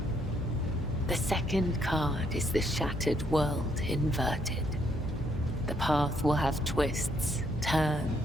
The second card is the shattered world inverted. The path will have twists,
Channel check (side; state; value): both; normal; correlation 0.71